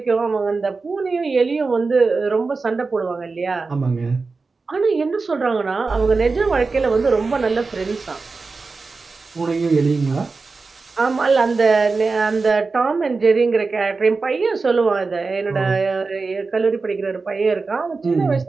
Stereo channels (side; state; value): left; quieter; 4.2 dB